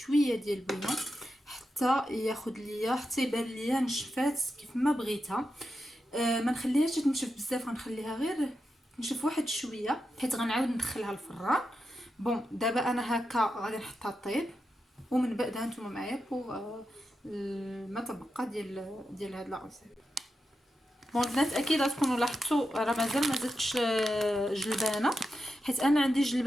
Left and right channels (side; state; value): both; normal; correlation 0.88